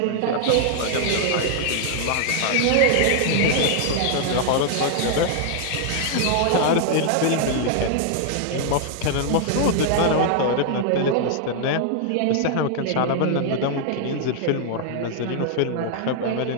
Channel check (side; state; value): both; different; correlation 0.00